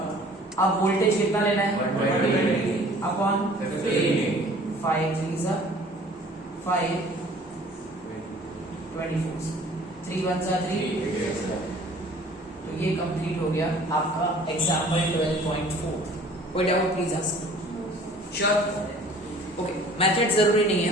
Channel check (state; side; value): normal; both; correlation 0.51